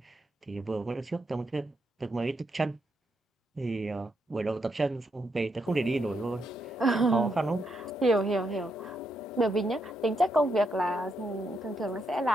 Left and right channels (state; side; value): normal; both; correlation 0.80